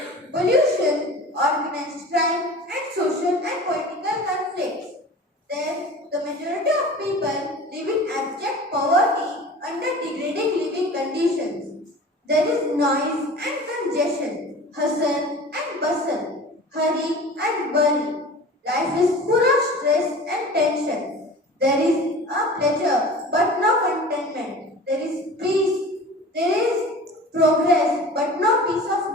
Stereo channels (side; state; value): both; normal; correlation 0.38